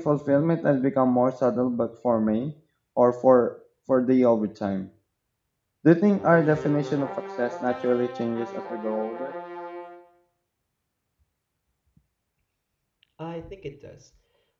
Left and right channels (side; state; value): both; identical; correlation 1.00